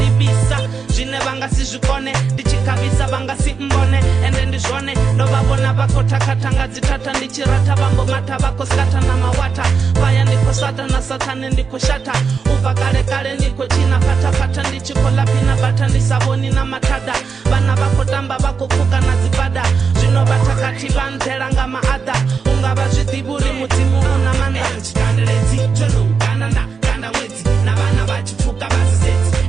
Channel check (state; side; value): quieter; left; 5.5 dB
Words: zvine vangasizvikone ndichikavisa vangasimbone ende ndizvone ndovavona vakotakatanga dzitata ndichirata vambomata vakoskata namawata vaya ndikosata nasatane ndikoshata ubva kare kare ndikochina patapata ndichikolapina bata ndisavoni namatada vana vakotamba vakopuka nadzibada zvinovatakati vanzeranga maadha ungava zvidhiburi mudzimu una manda chikanderedzi tonoukanana kanda mwedzi navana vachipuka vasisedzi